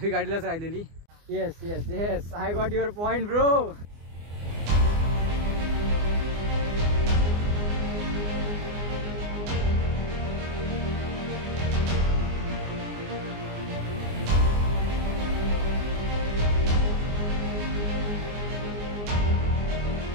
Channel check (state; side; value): late; left; 24 ms